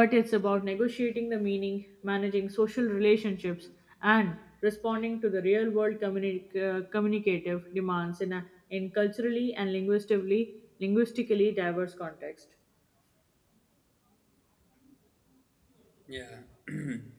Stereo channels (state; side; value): identical; both; correlation 1.00